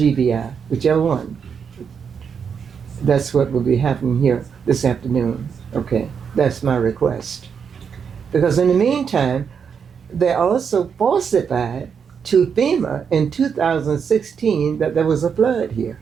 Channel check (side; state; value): left; quieter; 6.7 dB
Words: whichever one. That's what will be happening here this afternoon, okay? That's my request. Because in the meantime, they also falsified to FEMA in 2016 that there was a flood here,